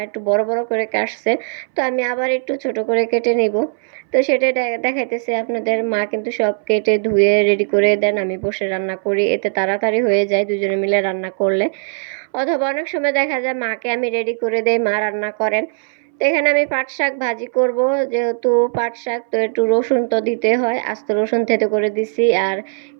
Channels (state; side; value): silent; left; 62 dB below the other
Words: একটু বড় বড় করে কাটছে। তো আমি আবার একটু ছোট করে কেটে নিব। তো সেটাই দেখাইতেছে আপনাদের। মা কিন্তু সব কেটে ধুয়ে রেডি করে দেন, আমি বসে রান্না করি, এতে তাড়াতাড়ি হয়ে যায় দুজনে মিলে রান্না করলে। অথবা অনেক সময় দেখা যায় মাকে আমি রেডি করে দেই, মা রান্না করেন। তো এখানে আমি পাট শাক ভাজি করব। যেহেতু পাট শাক, তো একটু রসুন তো দিতে হয়, আস্ত রসুন থেতো করে দিছি, আর